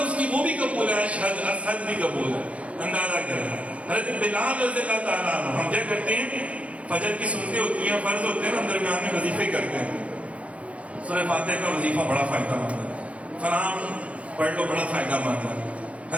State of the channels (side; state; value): left; late; 0.064 ms